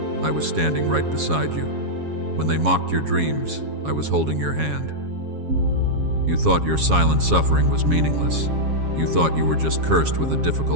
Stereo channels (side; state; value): left; late; 7.3 ms